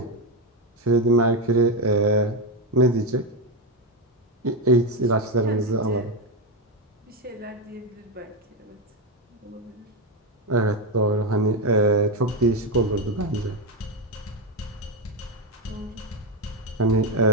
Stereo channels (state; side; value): normal; both; correlation 0.09